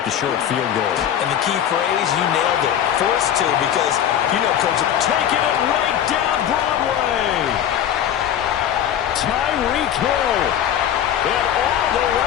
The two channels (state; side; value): quieter; right; 10.1 dB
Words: the short field goal. And the key phrase, you nailed it. Forced to, because, you know, Coach, taking it right down Broadway. throw. And all the